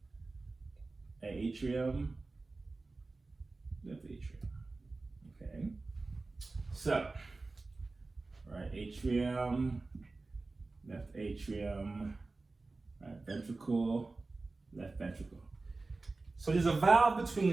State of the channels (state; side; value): quieter; left; 3.5 dB